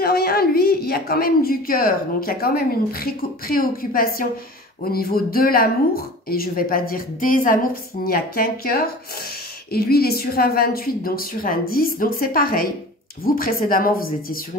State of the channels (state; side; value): normal; both; correlation 0.39